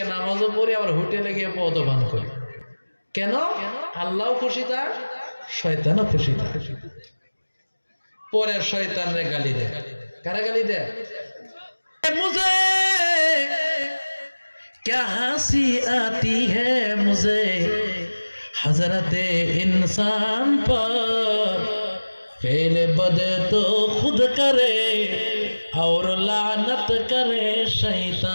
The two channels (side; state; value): both; inverted; correlation -1.00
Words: নামাজও পড়ি, আবার হোটেলে গিয়ে মদ্যপান করি। কেন? আল্লাহও খুশি থাক, শয়তানও খুশি থাক। পরে শয়তানরে গালি দেয়। কারা গালি দেয়? मुझे क्या हंसी आती है मुझे हजरते इंसान पर, फेले बदे तो खुद करे और लानत करे